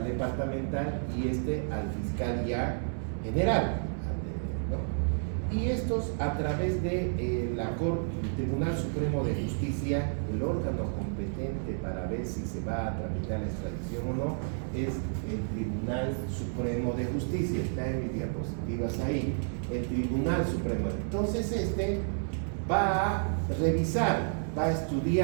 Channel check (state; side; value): silent; left; 57 dB below the other